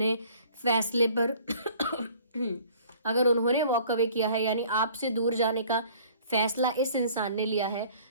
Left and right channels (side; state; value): both; inverted; correlation -0.53